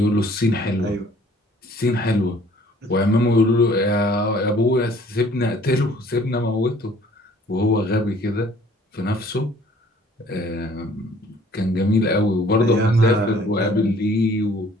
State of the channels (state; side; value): normal; both; correlation 0.56